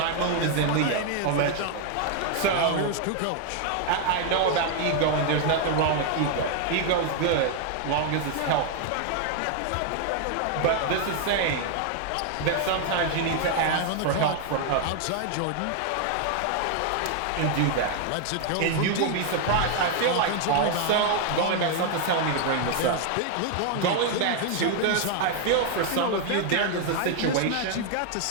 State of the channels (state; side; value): different; both; correlation 0.00